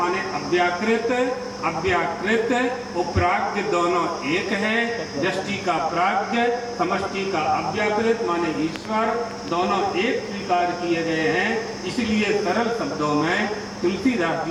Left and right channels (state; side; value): identical; both; correlation 1.00